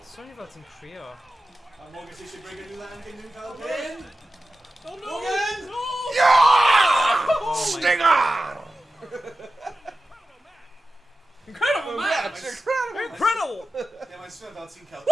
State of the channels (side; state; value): both; normal; correlation 0.94